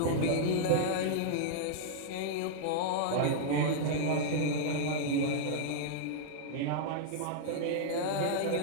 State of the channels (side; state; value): both; different; correlation -0.02